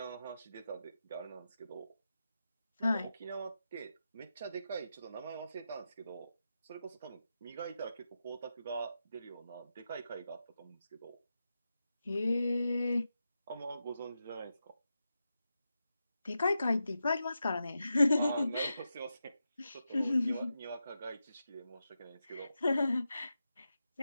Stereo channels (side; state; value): both; inverted; correlation -0.89